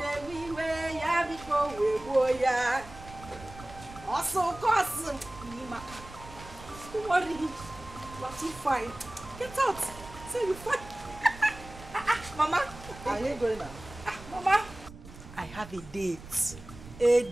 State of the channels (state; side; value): noise; right; rumble, 16 dB below the sound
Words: Don't worry, you are too fine. Get out. Say you fine. Mama. Are you going now? Mama. I have a date. A